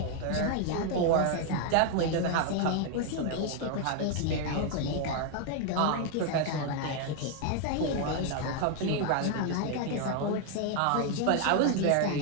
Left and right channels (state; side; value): different; both; correlation 0.00